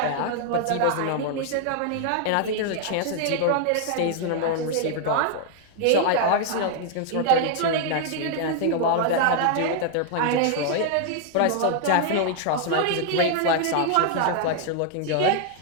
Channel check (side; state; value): both; different; correlation 0.00